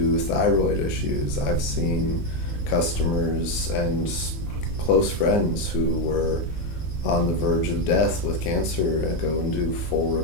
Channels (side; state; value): right; late; 19 ms